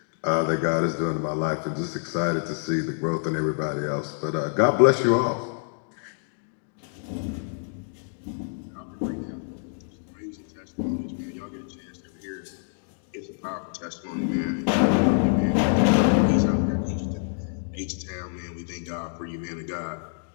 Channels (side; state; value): right; silent; digital silence